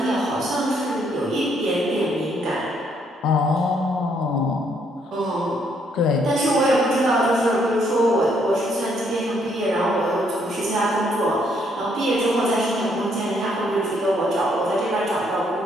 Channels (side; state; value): both; normal; correlation 0.70